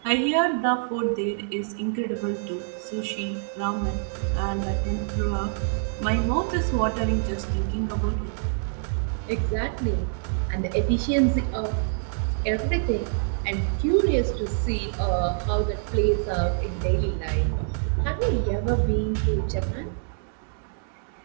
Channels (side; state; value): left; silent; digital silence